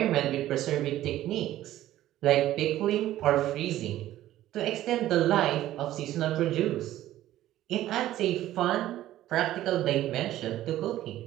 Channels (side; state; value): left; quieter; 13.9 dB